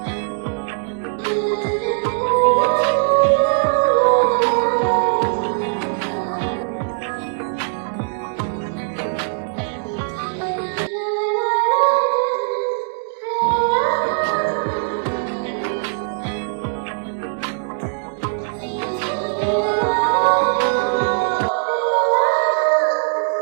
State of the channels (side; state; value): left; silent; digital silence